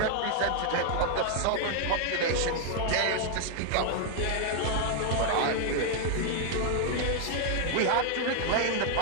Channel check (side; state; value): both; different; correlation 0.00